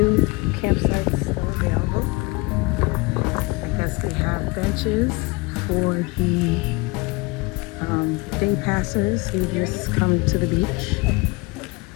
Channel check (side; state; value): right; quieter; 25.5 dB